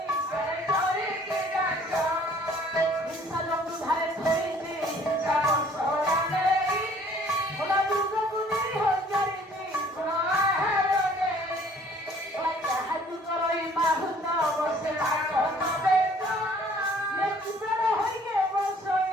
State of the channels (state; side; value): normal; both; correlation 0.56